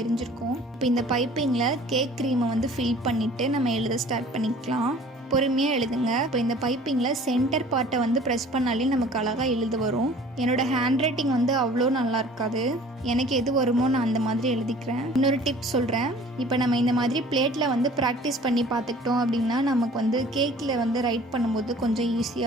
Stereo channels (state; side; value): normal; both; correlation 0.49